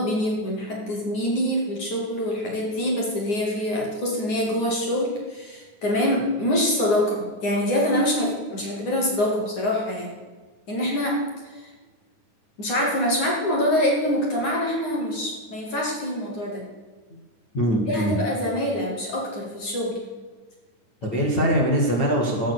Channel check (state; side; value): late; right; 9.6 ms